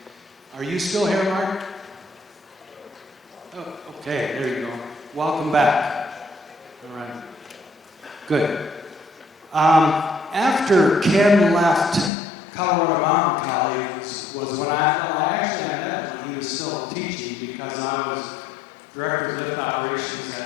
Are you still here, Mark? Oh, okay, there you go. Welcome back. All right. Good. After Ken left Colorado Mountain College was when I met him when he was still teaching, because I was director of lift operations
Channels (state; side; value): drops out; right; at 12.1 s